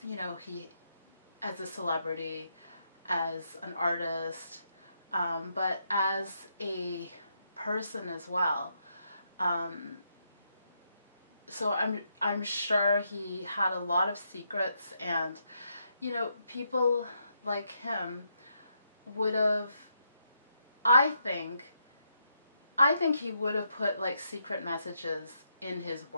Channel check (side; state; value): both; inverted; correlation -0.79